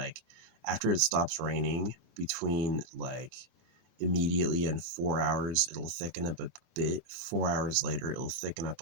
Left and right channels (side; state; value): left; late; 24 ms